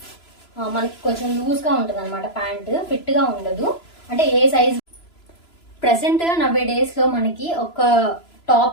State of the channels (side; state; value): right; late; 3.0 ms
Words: కొంచెం లూజ్గా ఉంటుంది అనమాట. ప్యాంట్ ఫిట్గా ఉండదు. అంటే ఏ సైజ్ ప్రెసెంట్ నవ్వే డేస్లో మనకి ఒక